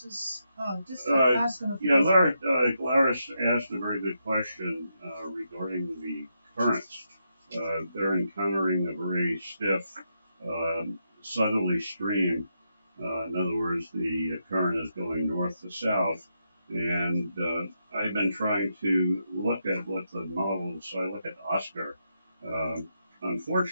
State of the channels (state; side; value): inverted; both; correlation -0.82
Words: Oh, just asking. Laris asked a very good question regarding the currents. They're encountering a very stiff southerly stream. In other words, the current is going north to south. And I've been trying to look at what the models, so I look at Oscar.